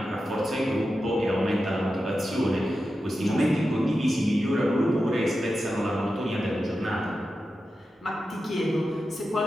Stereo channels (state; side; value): normal; both; correlation 0.91